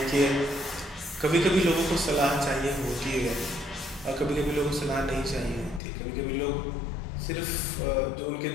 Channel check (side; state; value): right; drops out; at 5.8 s